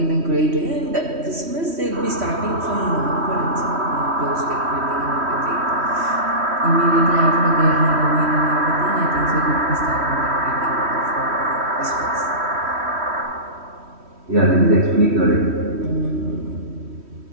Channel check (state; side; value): late; left; 3.1 ms